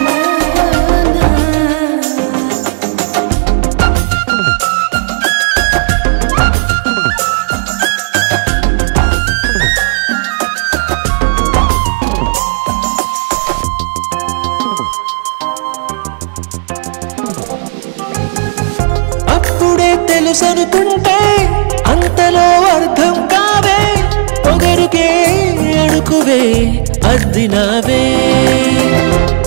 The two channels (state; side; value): silent; left; digital silence